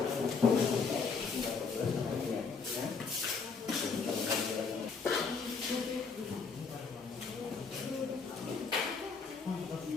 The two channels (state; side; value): quieter; right; 5.0 dB